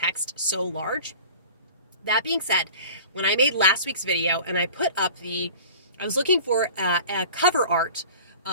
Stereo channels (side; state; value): both; inverted; correlation -0.41